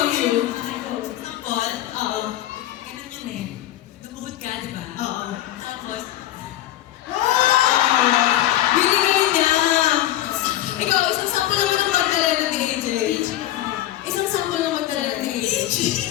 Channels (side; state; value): right; quieter; 14.0 dB